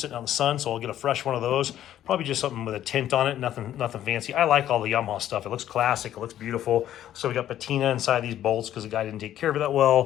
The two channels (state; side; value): quieter; right; 11.8 dB